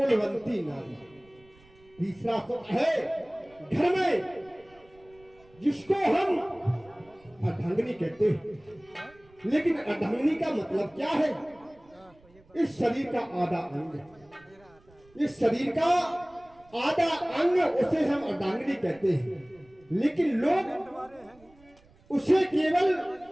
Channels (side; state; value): right; noise; rumble, 28 dB below the sound